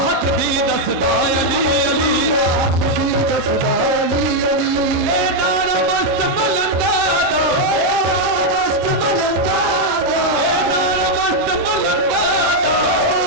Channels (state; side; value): normal; both; correlation 0.01